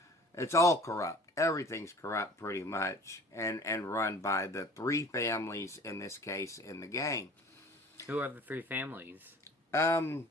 It's all corrupt. Everything's corrupt pretty much, and run by the 3 families in this case in the game. Who are the 3 families? I'm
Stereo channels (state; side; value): normal; both; correlation 0.46